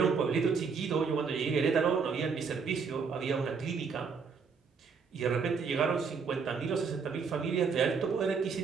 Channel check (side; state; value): left; quieter; 5.5 dB